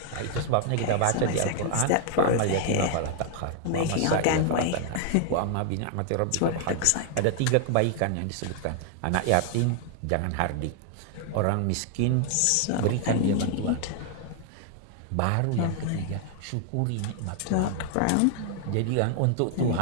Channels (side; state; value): both; different; correlation 0.00